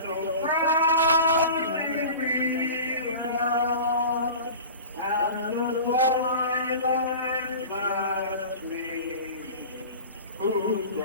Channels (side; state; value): both; inverted; correlation -0.37